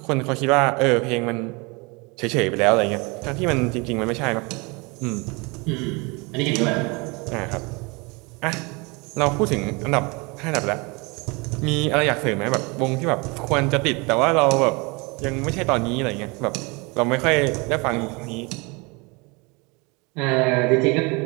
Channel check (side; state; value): left; quieter; 27.9 dB